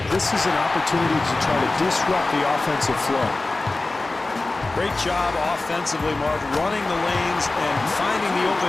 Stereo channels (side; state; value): right; quieter; 3.2 dB